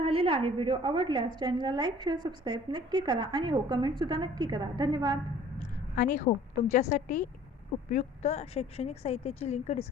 आहे. व्हिडिओ आवडल्यास चॅनलला लाईक, शेअर, सबस्क्राईब नक्की करा आणि हो कमेंटसुद्धा नक्की करा. धन्यवाद. आणि हो तुमच्यासाठी उपयुक्त शैक्षणिक साहित्याची लिंक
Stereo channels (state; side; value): normal; both; correlation 0.52